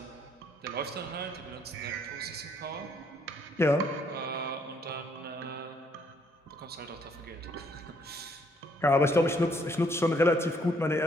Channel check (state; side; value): normal; both; correlation 0.67